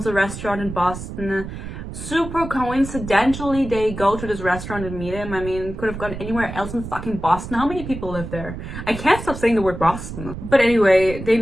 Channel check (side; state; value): right; noise; rumble, 9 dB below the sound